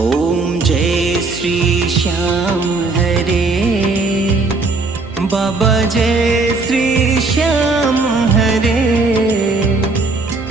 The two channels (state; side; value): quieter; left; 3.7 dB